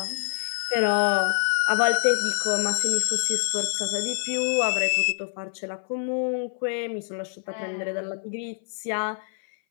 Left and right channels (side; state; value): right; silent; 58 dB below the other